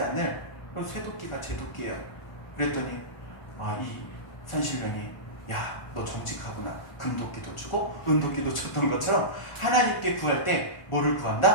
않을 쇠도끼가 제 도끼예요. 그랬더니 이 산신령이 야, 너 정직하구나. 금도끼도 주고 은도끼도 줬던 것처럼 하나님께 구할 때 뭐를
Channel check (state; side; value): late; right; 1.4 ms